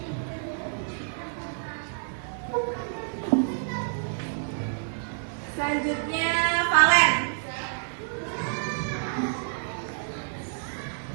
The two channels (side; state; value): left; silent; 58 dB below the other